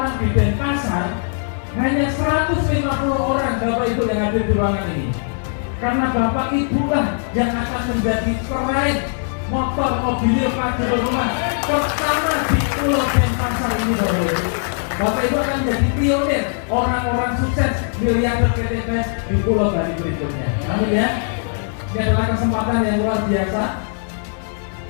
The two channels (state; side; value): silent; right; digital silence